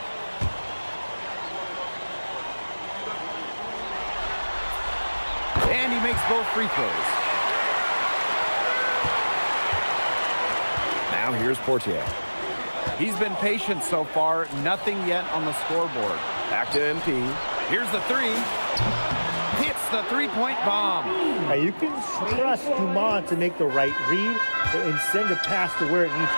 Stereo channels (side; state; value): both; inverted; correlation -1.00